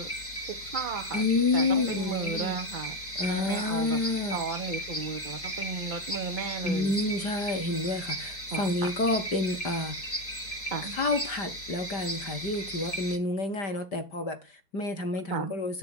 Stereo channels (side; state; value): right; late; 4.7 ms